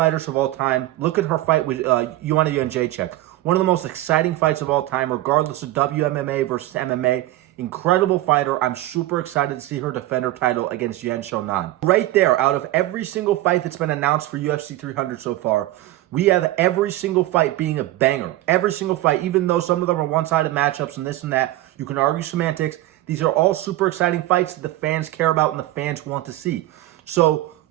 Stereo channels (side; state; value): left; quieter; 16.0 dB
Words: of all time. Look at her fight with Joanna Jędrzejczyk. One of the most exciting fights of all time, regardless of WMMA versus MMA. Incredible fighter. I'm super excited to see her defend her title against Yan Xiaonan. Right there, out of every single fight that's been announced for UFC 300 so far, we have every single fight being a banger. Every single fight, even though some of them are one-sided matchups and this and that. You can argue semantics. These are all super exciting fights that the fans care about and the fans want to see. So